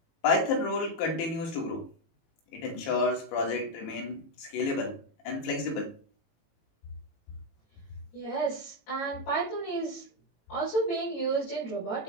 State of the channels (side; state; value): right; late; 18 ms